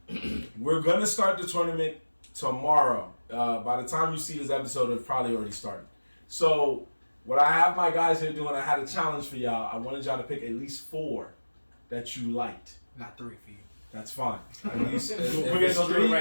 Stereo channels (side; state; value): both; inverted; correlation -1.00